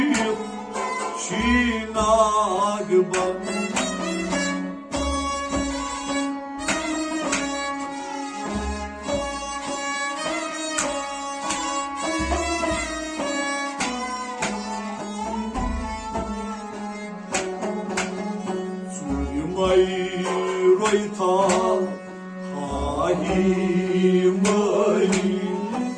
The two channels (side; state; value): both; identical; correlation 1.00